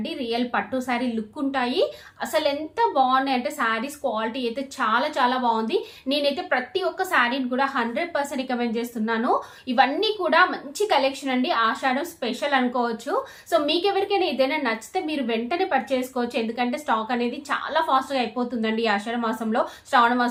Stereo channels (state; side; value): identical; both; correlation 1.00